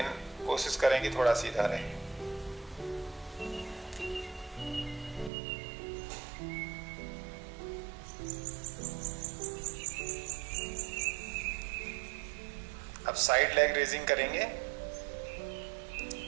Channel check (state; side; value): drops out; left; at 5.3 s